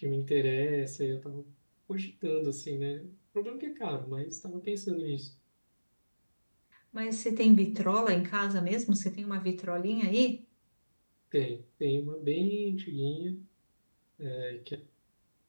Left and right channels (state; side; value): inverted; both; correlation -1.00